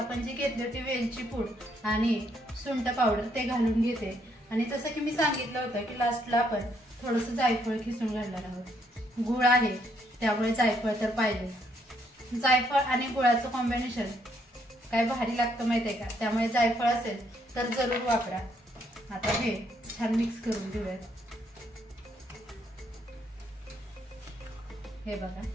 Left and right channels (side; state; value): both; normal; correlation 0.72